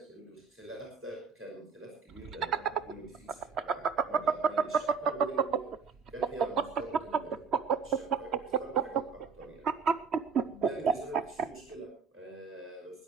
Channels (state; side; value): quieter; left; 5.7 dB